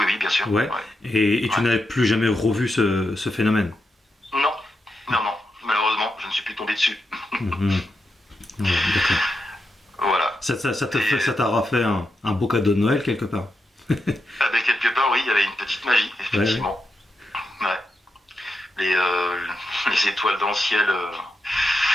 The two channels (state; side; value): normal; both; correlation 0.86